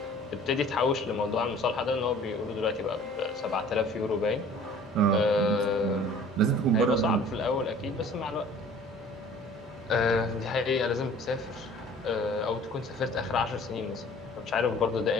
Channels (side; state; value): both; normal; correlation 0.49